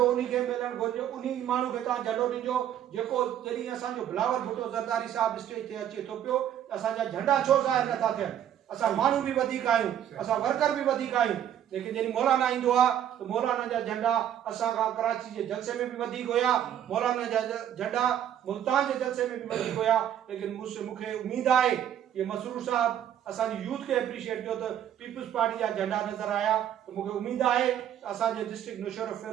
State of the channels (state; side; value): quieter; left; 10.3 dB